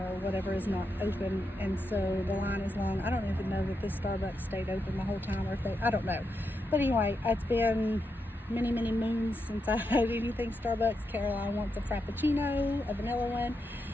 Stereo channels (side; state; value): both; normal; correlation 0.85